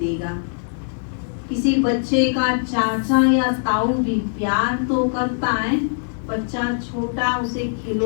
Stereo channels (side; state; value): right; silent; digital silence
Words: किसी बच्चे का चाचा या ताऊ भी प्यार तो करता है, बच्चा छोटा उसे